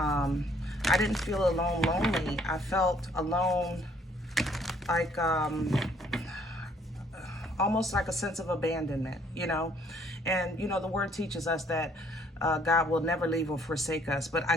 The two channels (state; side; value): normal; both; correlation 0.63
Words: didn't feel alone lonely. I felt alone like almost like a sense of abandonment, you know. And, you know, the word teaches us that God will never leave or forsake us, but I